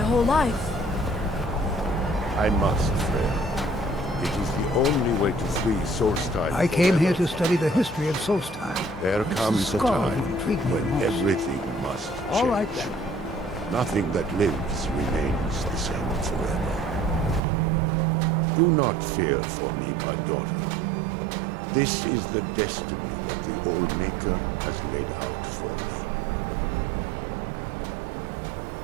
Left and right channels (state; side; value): drops out; left; at 17.4 s